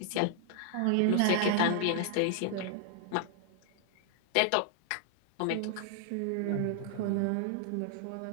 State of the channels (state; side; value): different; both; correlation -0.01